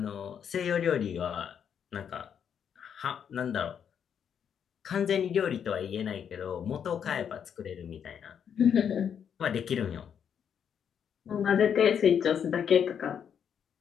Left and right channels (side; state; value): right; quieter; 8.0 dB